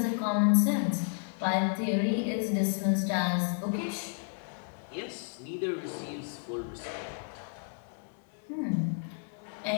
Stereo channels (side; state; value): right; silent; 56 dB below the other